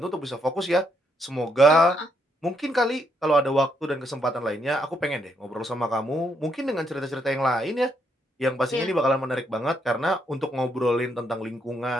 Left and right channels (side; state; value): both; normal; correlation 0.75